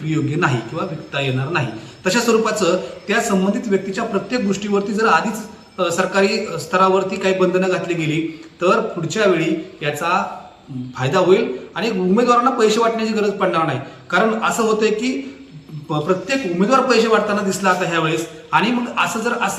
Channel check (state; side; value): identical; both; correlation 1.00